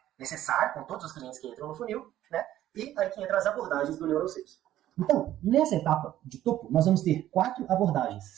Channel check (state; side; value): quieter; left; 13.0 dB